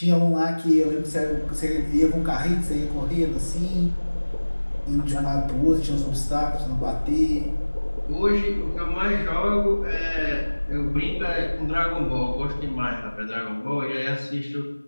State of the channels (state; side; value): inverted; both; correlation -1.00